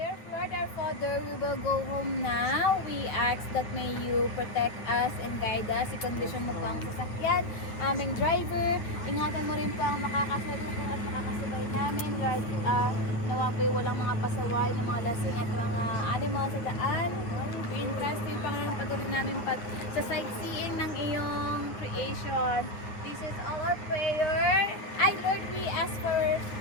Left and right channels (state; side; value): late; right; 8.9 ms